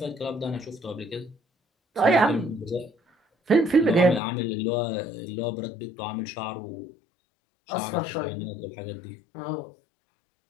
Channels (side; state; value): right; drops out; at 4.2 s